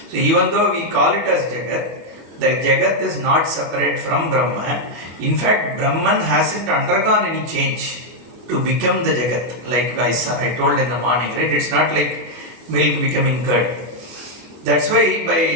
So even though we call it as jagat, the jagat is not separate from Brahma. In fact, Brahman hasn't undergone any change to become the jagat. Like I told in the morning, right? It's not like milk becoming curd. That's why,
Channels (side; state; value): left; late; 25 ms